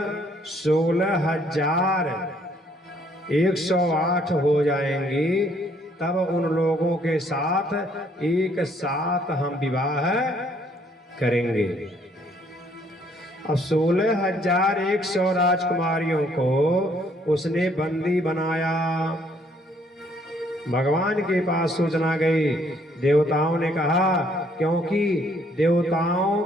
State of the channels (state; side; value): normal; both; correlation 0.65